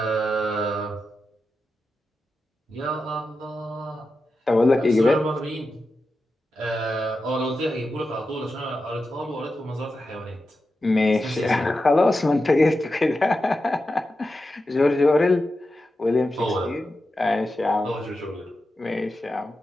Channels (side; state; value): both; normal; correlation 0.90